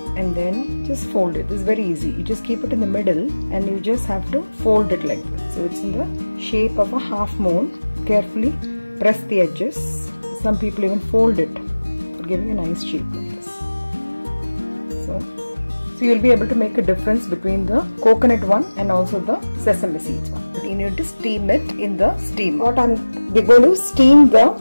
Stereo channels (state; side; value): inverted; both; correlation -1.00